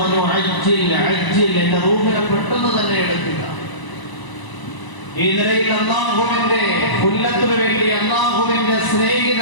അജ്ജിൽ അജ്ജിൽ, എന്റെ റൂഹിനെ പെട്ടെന്ന് തന്നെ എടുക്കുക. ഈ നിലയിൽ അല്ലാഹുവിന്റെ ഉല്ലത്തിന് വേണ്ടി അല്ലാഹുവിന്റെ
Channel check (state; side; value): late; right; 1.0 ms